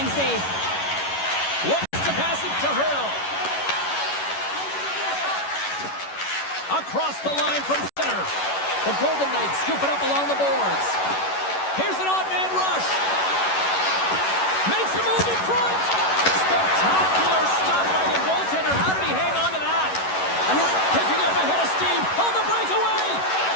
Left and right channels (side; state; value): right; late; 11 ms